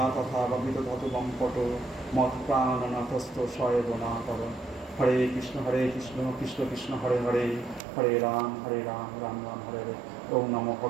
তথা বা বিদধত বঙ্কট মত প্রাণনাথস্থ সয়েবনা কর। হরে কৃষ্ণ কৃষ্ণ কৃষ্ণ হরে হরে হরে রাম রাম রাম হরে হরে। ওম নমো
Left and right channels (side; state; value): left; drops out; at 7.8 s